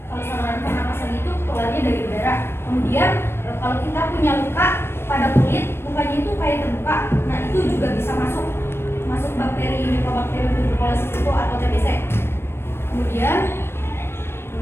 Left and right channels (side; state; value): right; late; 0.12 ms